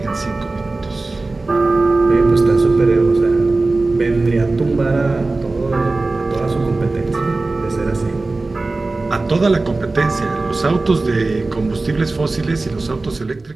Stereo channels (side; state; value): left; quieter; 3.3 dB